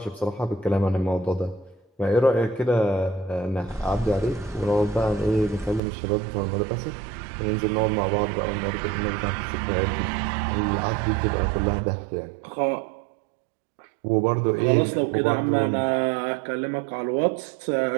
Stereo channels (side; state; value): left; drops out; at 5.8 s